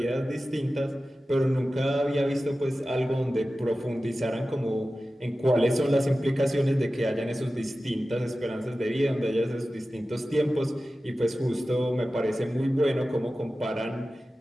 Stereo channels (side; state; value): both; normal; correlation 0.95